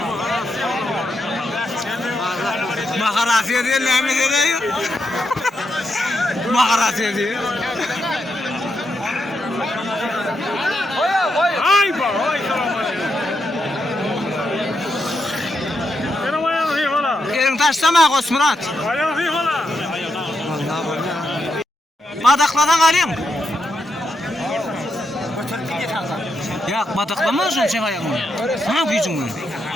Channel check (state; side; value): normal; both; correlation 0.83